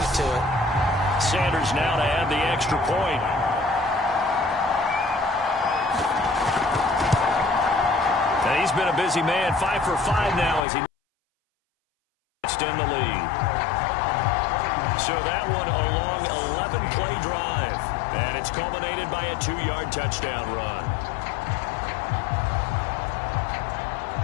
to it. Sanders now to add the extra point. And he's been a busy man. 5 for 5 now as he in the lead. So that one a long 11-play drive. And it's culminated by a 2-yard touchdown run.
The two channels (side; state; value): right; drops out; at 10.7 s